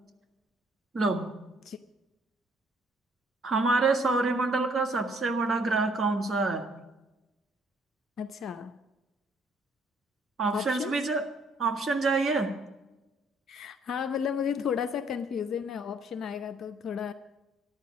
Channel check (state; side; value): normal; both; correlation 0.63